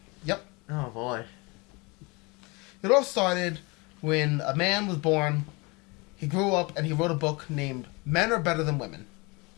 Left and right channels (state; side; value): quieter; right; 27.2 dB